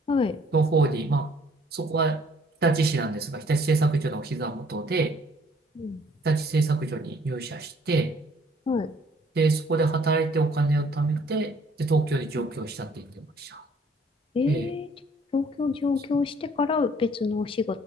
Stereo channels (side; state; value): both; normal; correlation 0.60